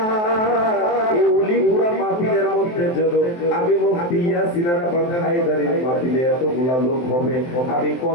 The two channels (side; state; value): right; late; 23 ms